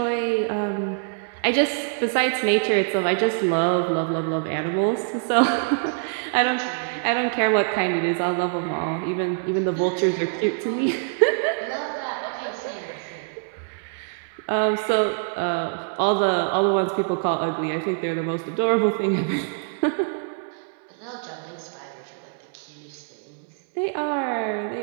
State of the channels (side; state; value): left; silent; 62 dB below the other